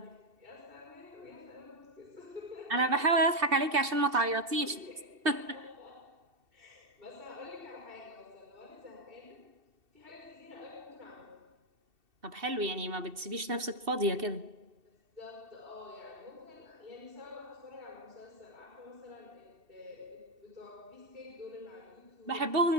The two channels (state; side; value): late; left; 2.7 ms